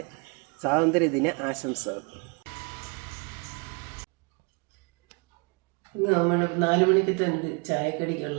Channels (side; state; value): left; quieter; 33.0 dB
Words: സ്വാതന്ത്ര്യദിന ആശംസകൾ. ഇന്ന് നമ്മൾ 4 മണിക്കത്തെ